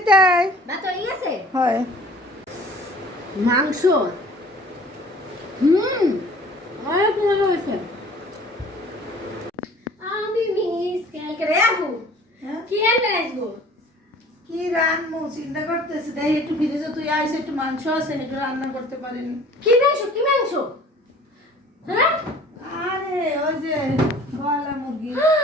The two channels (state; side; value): normal; both; correlation 0.49